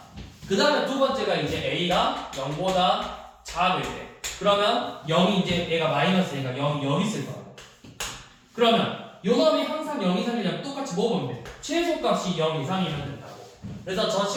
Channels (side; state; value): both; identical; correlation 1.00